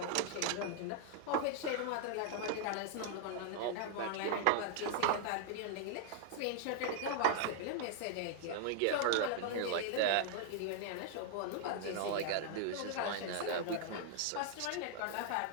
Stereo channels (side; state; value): both; different; correlation 0.00